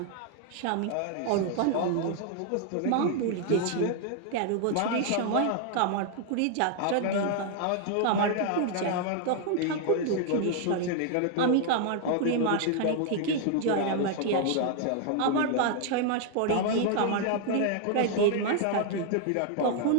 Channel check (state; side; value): different; both; correlation 0.00